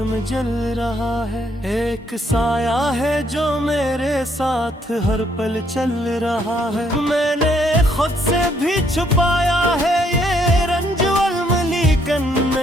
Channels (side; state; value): both; normal; correlation 0.70